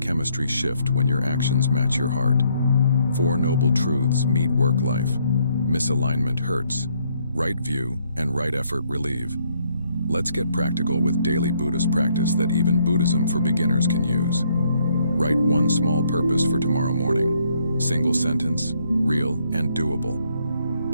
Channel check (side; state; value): both; inverted; correlation -0.70